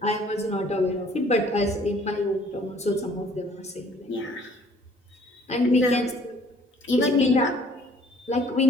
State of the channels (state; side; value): normal; both; correlation 0.57